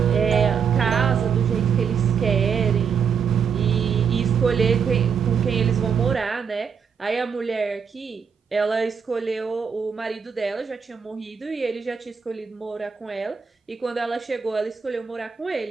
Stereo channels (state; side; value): quieter; left; 6.6 dB